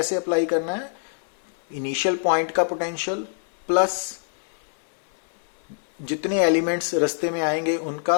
अप्लाई करना है, इनिशियल पॉइंट का पोटेंशियल प्लस जितने एलिमेंट्स रास्ते में आएंगे उनका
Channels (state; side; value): silent; right; 62 dB below the other